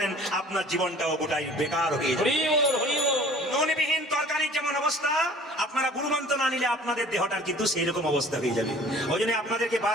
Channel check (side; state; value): both; normal; correlation 0.49